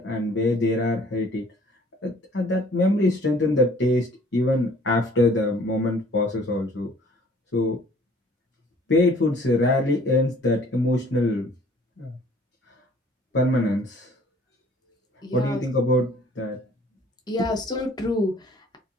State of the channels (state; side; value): normal; both; correlation 0.55